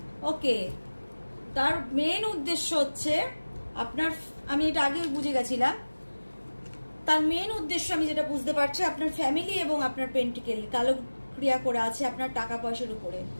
ওকে, তার মেন উদ্দেশ্য হচ্ছে আপনার, আমি এটা আগে বুঝে গেছিলাম, তার মেন উদ্দেশ্য আমি যেটা বুঝতে পারছি, আপনার ফ্যামিলি এবং আপনার পেন্টিকেল কালো ক্রিয়া করে আছে আপনার টাকা পয়সার উপরে।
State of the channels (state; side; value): inverted; both; correlation -1.00